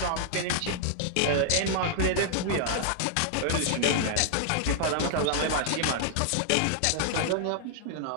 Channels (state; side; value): different; both; correlation -0.01